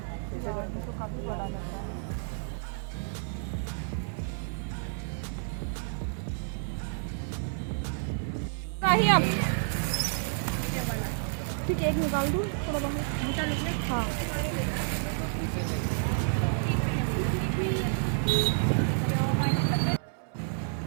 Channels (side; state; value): left; silent; 58 dB below the other